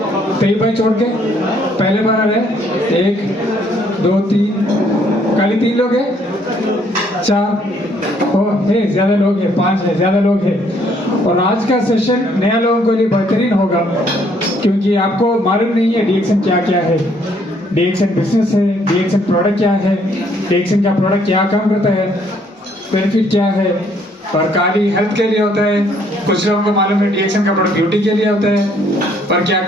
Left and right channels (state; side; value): normal; both; correlation 0.66